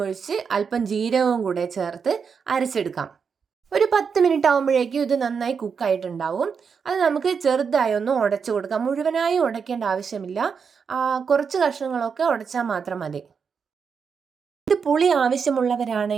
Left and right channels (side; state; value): left; quieter; 6.1 dB